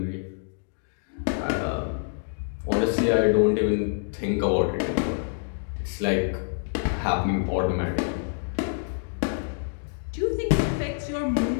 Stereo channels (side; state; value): right; silent; digital silence